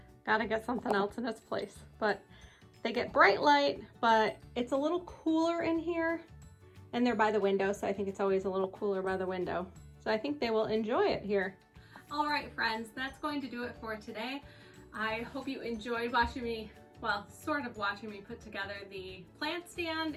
Gotta get something else in its place. But they get bright light, but it's a little cooler in here. And they're by the window, so I think it's always a little cooler by the window. So I think they will enjoy it here. All right, friends, that's going to do it for today. I hope you enjoyed watching me, well, sort of watching me put together the plant stand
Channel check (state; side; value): identical; both; correlation 1.00